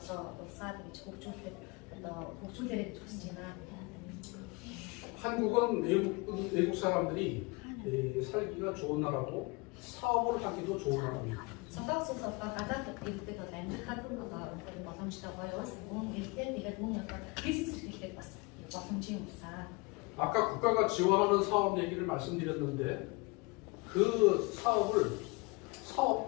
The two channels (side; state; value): right; quieter; 27.4 dB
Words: улсаа гэж хөгжүүлэхэд одоо хөгжүүлээрэй гэж хүсэж байна. 한국은 외국 사람들이 살기가 좋은 나라고 사업을 하기도 좋은 나라입니다. Солонгос улс одоо гадаад иргэдэд бол амьдрахад одоо боломжтой гоё улс, мөн иргэдэд тэгээд мөн одоо бизнес эрхлэхэд бас боломжийн улсаа. 아까 국가가 지원하는 사업 얘기를 말씀드렸는데 그 사업